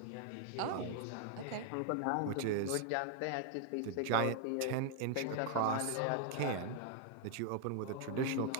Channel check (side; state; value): both; different; correlation 0.00